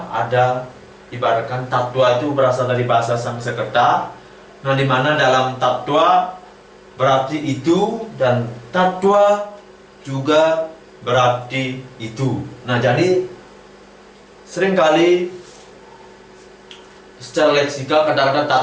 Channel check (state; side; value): identical; both; correlation 1.00